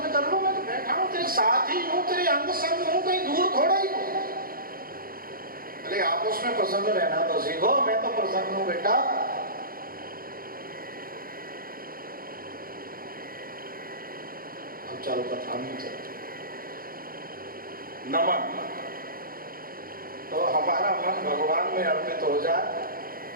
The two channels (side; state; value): left; late; 0.42 ms